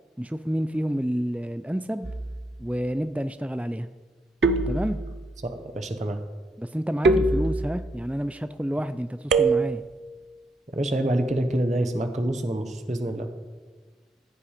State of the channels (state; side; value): normal; both; correlation 0.78